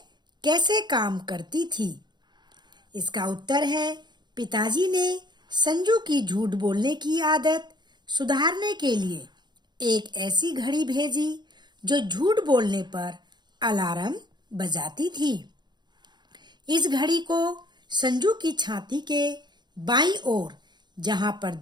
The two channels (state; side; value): late; left; 0.21 ms